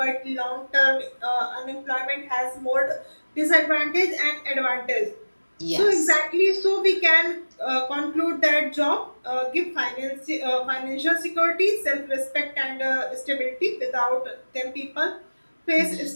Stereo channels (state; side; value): inverted; both; correlation -1.00